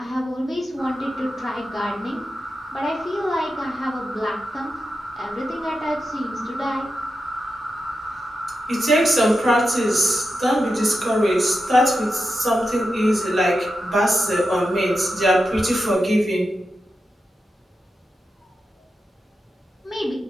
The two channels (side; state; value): both; normal; correlation 0.89